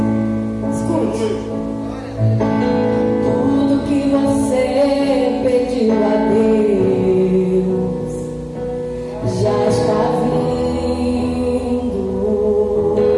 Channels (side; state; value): both; identical; correlation 1.00